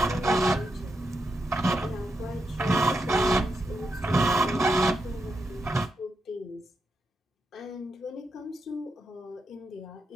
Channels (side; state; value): both; normal; correlation 0.85